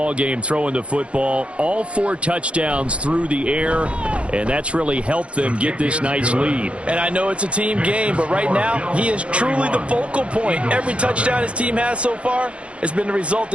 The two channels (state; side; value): late; left; 0.060 ms